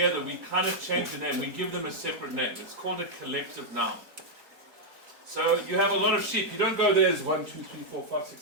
we kind of change the name. We give them a separate name. It's called a collective noun. So you have a lot of sheep. You don't go, there's 1, 2, 3, 4, 5, 6,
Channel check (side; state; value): left; late; 4.4 ms